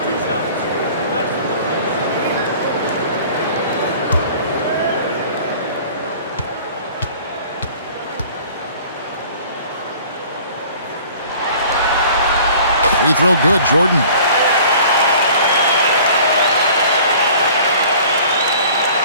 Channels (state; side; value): inverted; both; correlation -0.48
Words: Free throw good, Jordan.